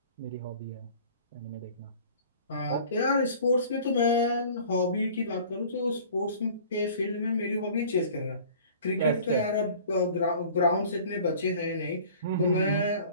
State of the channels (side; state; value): both; inverted; correlation -0.47